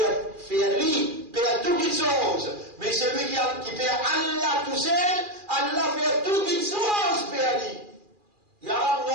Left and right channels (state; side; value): late; left; 2.4 ms